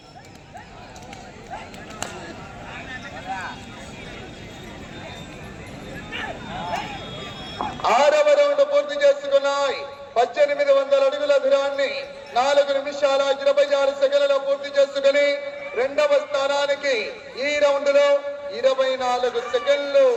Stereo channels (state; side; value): identical; both; correlation 1.00